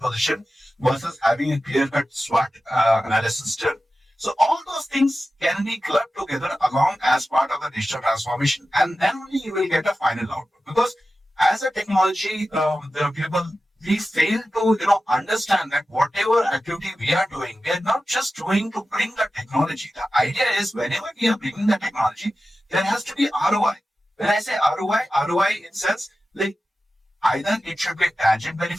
versus having a clear-cut SWOT analysis done. So all those things can be clubbed together along as part of the digital transformation, and then only you will get a final output. Because as a technology, the people we fail to understand that whatever activity we are doing, we are not just doing to bring the technology. The idea is whenever we are bringing the technology, there has to be ROI. When I say ROI in sense like either it should be a tangent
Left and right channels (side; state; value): both; normal; correlation 0.94